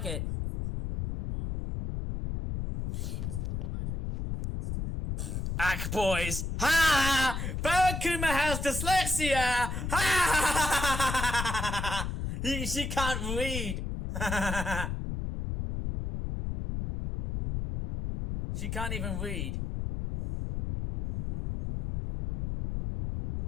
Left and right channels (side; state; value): left; noise; rumble, 3 dB below the sound